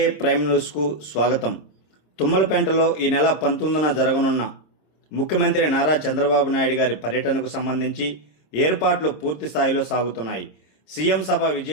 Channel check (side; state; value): right; late; 26 ms